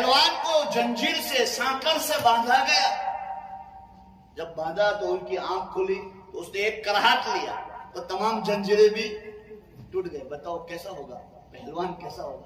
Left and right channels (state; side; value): identical; both; correlation 1.00